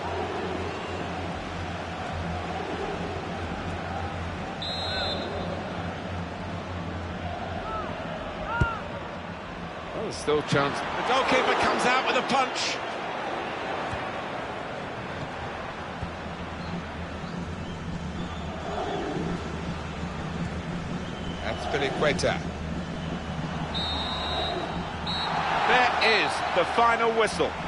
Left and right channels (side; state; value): both; identical; correlation 1.00